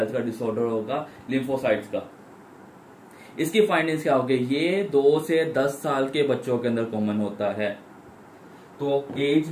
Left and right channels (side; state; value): both; identical; correlation 1.00